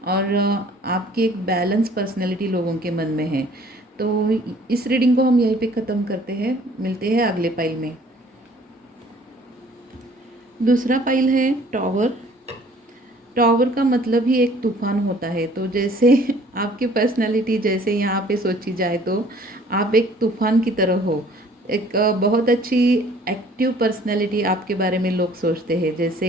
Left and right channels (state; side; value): normal; both; correlation 0.55